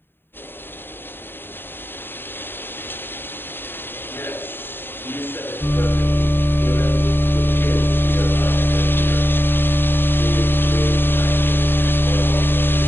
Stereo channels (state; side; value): late; right; 0.10 ms